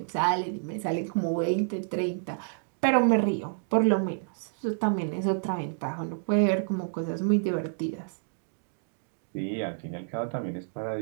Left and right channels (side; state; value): left; silent; digital silence